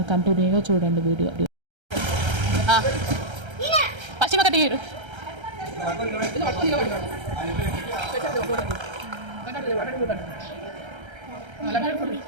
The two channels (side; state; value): left; late; 1.3 ms